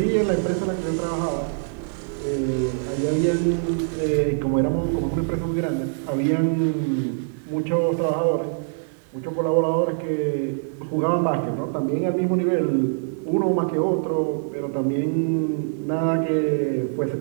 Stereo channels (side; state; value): left; silent; digital silence